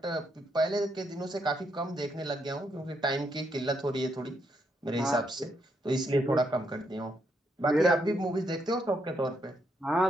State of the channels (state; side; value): normal; both; correlation 0.77